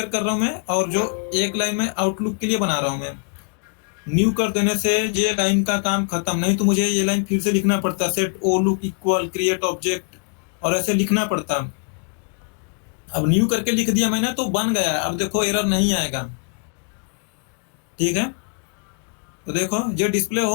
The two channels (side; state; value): right; quieter; 39.0 dB